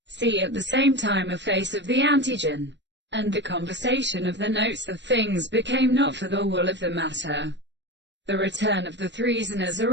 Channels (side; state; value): left; late; 0.52 ms